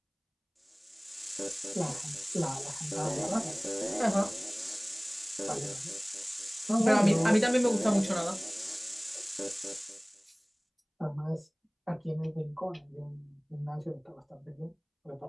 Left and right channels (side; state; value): both; identical; correlation 1.00